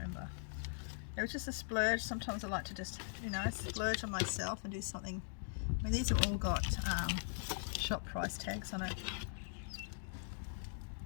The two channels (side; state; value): right; silent; digital silence